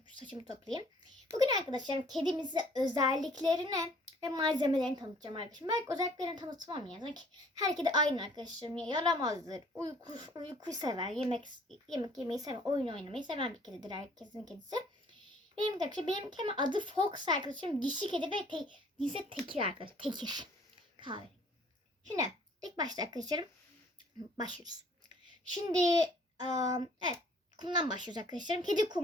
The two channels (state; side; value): normal; both; correlation 0.57